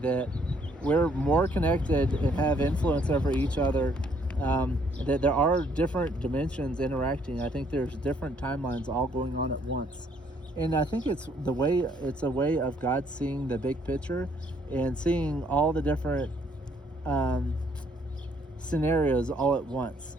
we're more connected and have influence over each other. That there are different dimensions interacting. I think there's different timelines all going on at once. And I think it's a way of God seeing the big picture and seeing all the different scenarios all at once.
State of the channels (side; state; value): both; normal; correlation 0.66